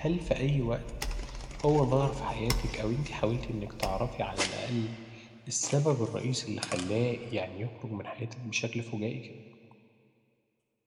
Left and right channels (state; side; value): identical; both; correlation 1.00